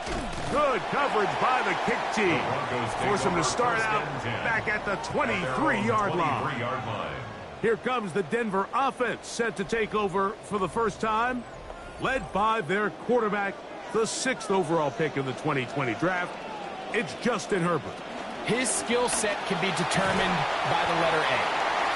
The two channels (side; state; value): both; identical; correlation 1.00